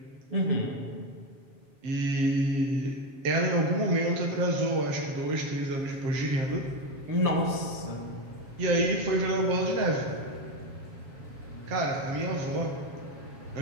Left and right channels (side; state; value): left; late; 7.4 ms